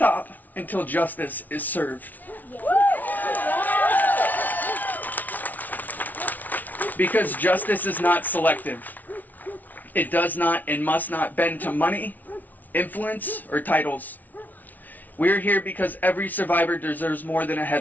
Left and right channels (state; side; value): late; right; 0.079 ms